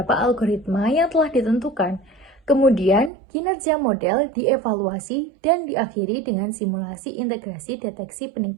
algoritma yang telah ditentukan. Kemudian, kinerja model dievaluasi dan diakhiri dengan simulasi integrasi deteksi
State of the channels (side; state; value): left; drops out; at 3.1 s